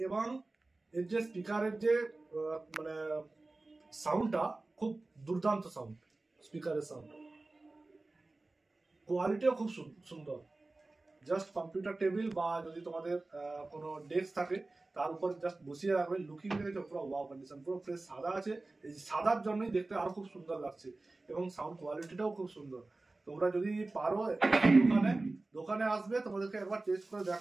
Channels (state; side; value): quieter; left; 3.2 dB